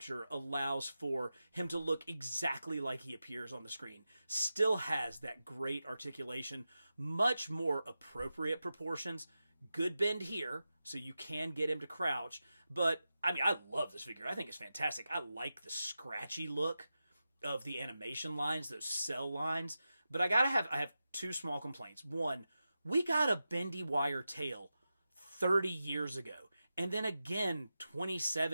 allows for him to look exactly like he appears on the screen. Still has that great articulation, much more appropriate proportions, good bend here, so you can get him to crouch. But, I love this figure. I think it's fantastic. I like the scratchy look of the animation lines, those cell lines. But I have two small complaints. One, we got a bendy wire tail 30 years ago, and then again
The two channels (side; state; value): both; inverted; correlation -0.92